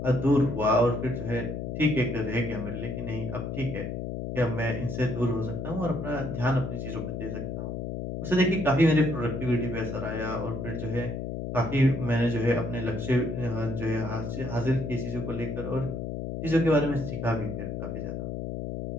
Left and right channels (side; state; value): left; noise; hum, 4 dB below the sound